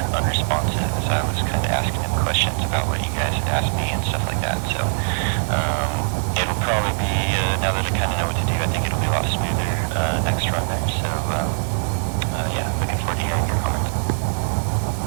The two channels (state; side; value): silent; left; digital silence